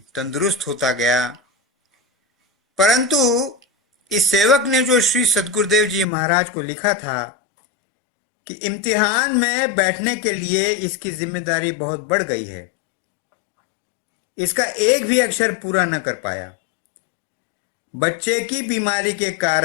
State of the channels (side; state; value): right; drops out; at 6.1 s